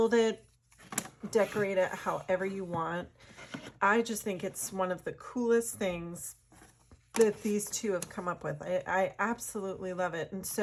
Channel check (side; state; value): both; identical; correlation 1.00